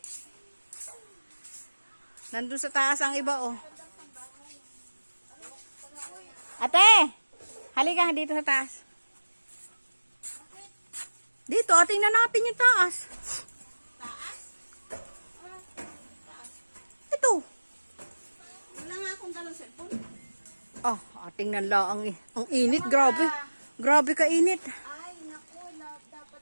Nandun sa taas ang iba, oh. Ate! Halika dito sa taas. Dito, tingnan natin yung taas. Ito. Wala nga akong dalang cellphone. Ah, tingnan lang ang init, grabe. Grabe ka init. Ay, naku,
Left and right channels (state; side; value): inverted; both; correlation -1.00